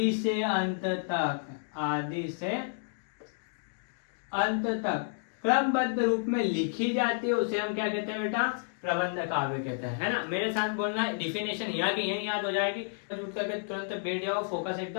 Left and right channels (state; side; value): silent; right; digital silence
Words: से अंत तक, आदि से अंत तक क्रमबद्ध रूप में लिखी जाती है, उसे हम क्या कहते हैं बेटा? प्रबंध काव्य कहते हैं, है ना। मेरे साथ बोलना, डिफिनेशन यहाँ की यही याद हो जाएगी। उठ करके तुरंत बैठ जाओ, फोकस